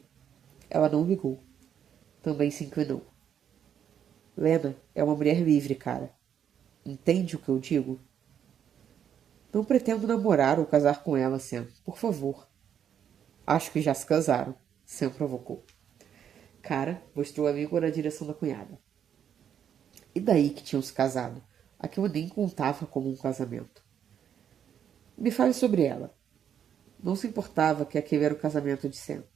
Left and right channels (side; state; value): left; quieter; 8.9 dB